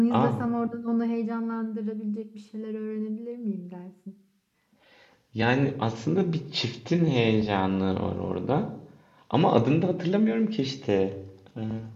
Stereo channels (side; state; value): both; identical; correlation 1.00